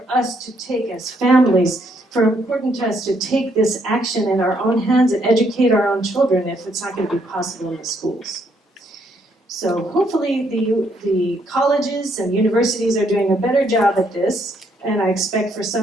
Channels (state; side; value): normal; both; correlation 0.72